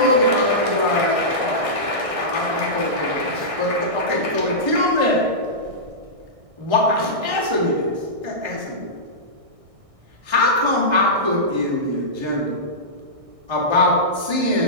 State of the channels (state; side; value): late; left; 1.6 ms